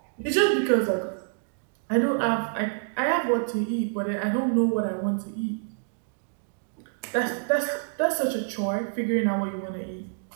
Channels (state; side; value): silent; left; digital silence